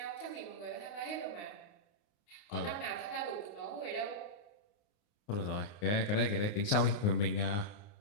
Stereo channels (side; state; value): right; late; 29 ms